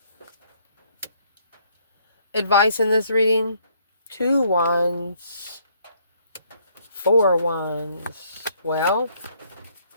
Advice in this reading. 2 Wands. 4 Wands. Well,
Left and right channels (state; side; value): inverted; both; correlation -0.67